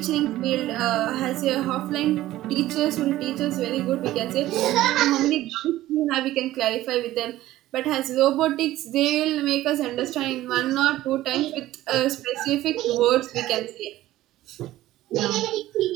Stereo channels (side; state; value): left; quieter; 15.3 dB